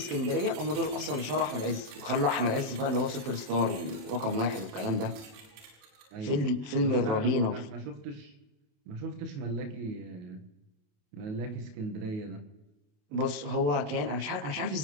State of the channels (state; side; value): late; left; 27 ms